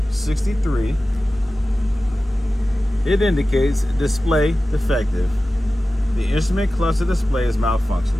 It indicates display defective. The instrument cluster display is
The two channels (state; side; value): normal; both; correlation 0.95